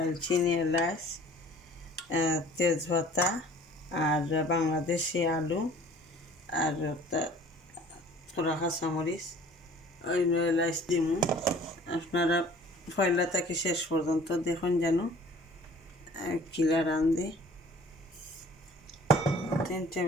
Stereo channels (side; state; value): both; normal; correlation 0.50